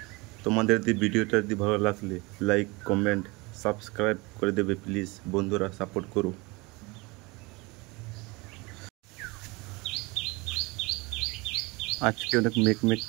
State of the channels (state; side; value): quieter; left; 25.2 dB